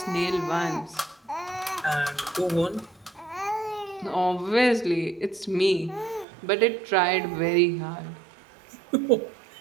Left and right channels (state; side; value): drops out; left; at 6.2 s